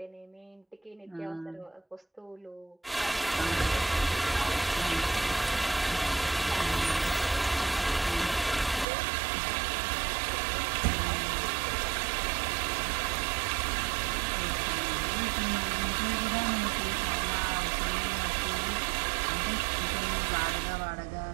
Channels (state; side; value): drops out; left; at 8.8 s